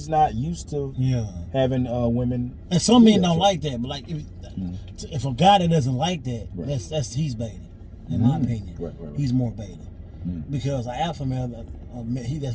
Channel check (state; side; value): identical; both; correlation 1.00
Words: not used to Yeah. having women. And some men Yeah, don't so- like that, but like if a guy that doesn't like that, Right. that's he's baiting. In my opinion, Right. he's more baiting Mm. because an alpha male,